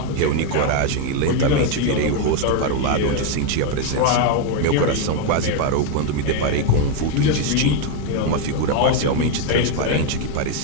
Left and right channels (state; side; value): different; both; correlation 0.01